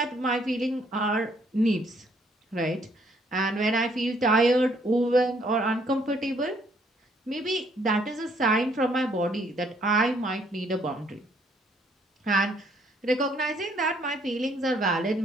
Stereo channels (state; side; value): normal; both; correlation 0.66